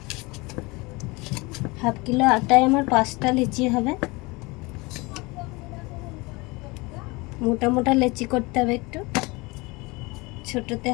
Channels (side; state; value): right; quieter; 24.8 dB